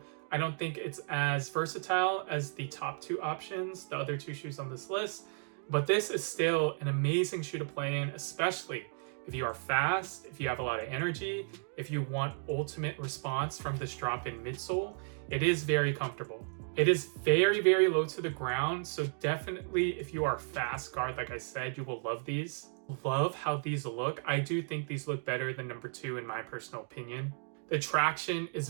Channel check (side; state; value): left; silent; 55 dB below the other